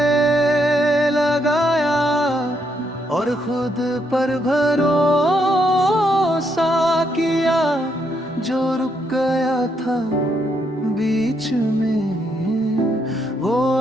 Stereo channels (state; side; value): normal; both; correlation 0.76